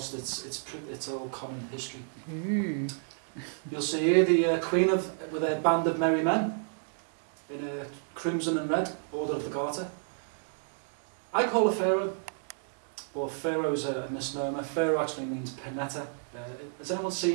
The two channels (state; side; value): silent; left; digital silence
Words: It's all common history. You'll see here the Queen with a band of merry men in a crimson and red Order of the Garter. I call her Pharaoh, but Pharaoh is a misnomer. Pharaoh actually means Penetta. Has anyone